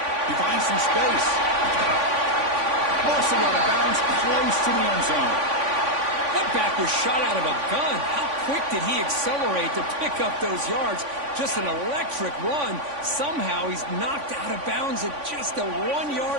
He finds some space. Mostly out of bounds, close to the end zone. That back was shot out of a gun. How quick did he accelerate to pick up those yards? Just an electric run. Somehow he's knocked out of bounds at just the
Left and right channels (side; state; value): left; late; 3.5 ms